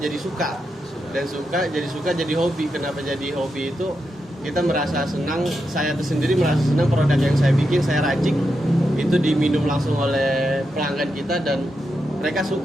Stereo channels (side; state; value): both; normal; correlation 0.86